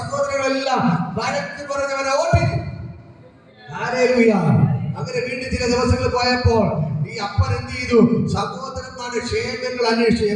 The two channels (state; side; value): identical; both; correlation 1.00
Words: വഴക്ക് പറഞ്ഞവനെ ഓട്ടിച്ചു. ഹാലേലൂയ. അങ്ങനെ വീണ്ടും ചില ദിവസങ്ങൾ പോയപ്പോൾ ഈ അപ്പൻ എന്ത് ചെയ്തു? സഹോദരന്മാരുടെ ക്ഷേമങ്ങൾ അന്വേഷിച്ചു.